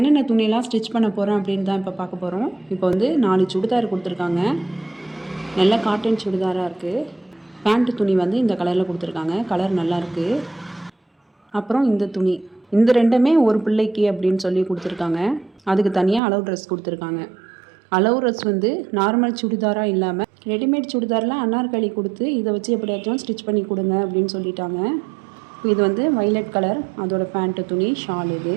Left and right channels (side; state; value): left; drops out; at 16.2 s